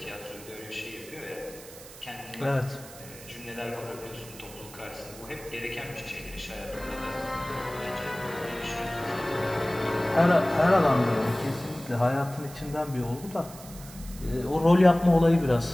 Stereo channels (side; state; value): right; noise; hiss, 17 dB below the sound